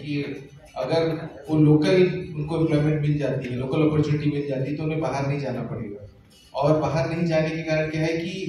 कि अगर वो लोकल उनको एम्प्लॉयमेंट मिल जाती है, लोकल अपॉर्चुनिटी मिल जाती है, तो उन्हें बाहर नहीं जाना पड़ेगा। और बाहर नहीं जाने के कारण क्या है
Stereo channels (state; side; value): identical; both; correlation 1.00